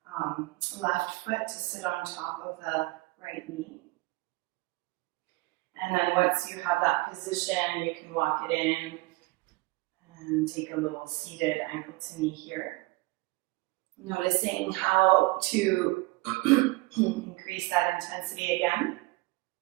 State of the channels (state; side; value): quieter; left; 22.5 dB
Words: left foot to sit on top of the right knee. And then once you have that position, you can walk it in and take a little seated ankle to knee here. Noticing how to increase that intensity again